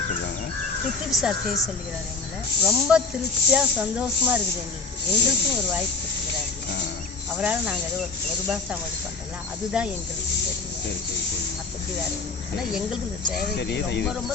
சொல்லுவாங்க? பித்திரி சார் செய்ய சொல்லுகிறார் எங்களை. ரொம்ப திருப்தியாக சந்தோஷமாக இருக்குது எங்களுக்கும் ஒரு வாய்ப்பு கொடுத்துக்கிறாரு. அவரால் நாங்கள் ஏதோ ஒரு பாஷா இது பண்ணுறல அதுதான் எங்களுக்கு தெரியும். சரி சரி சரி. மற்றபடி வேறு ஆனால் எங்களுக்கு இந்த சேவை ரொம்ப ரொம்ப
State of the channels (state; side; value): quieter; right; 4.3 dB